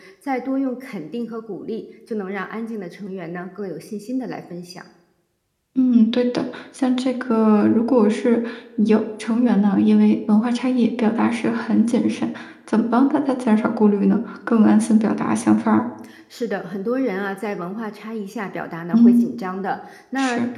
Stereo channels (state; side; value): identical; both; correlation 1.00